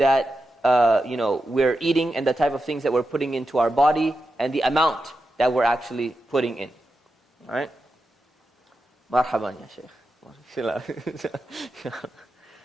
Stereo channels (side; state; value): both; normal; correlation 0.89